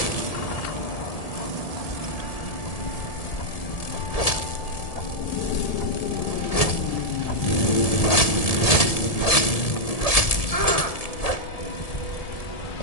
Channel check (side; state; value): right; late; 1.7 ms